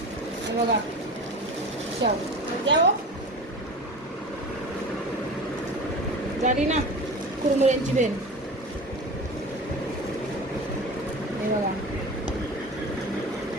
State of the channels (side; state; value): both; normal; correlation 0.33